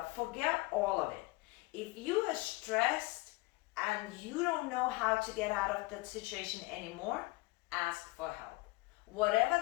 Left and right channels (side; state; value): right; quieter; 22.3 dB